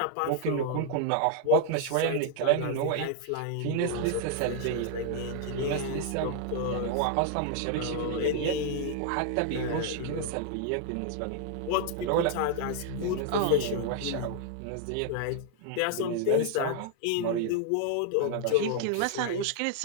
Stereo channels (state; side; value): different; both; correlation 0.00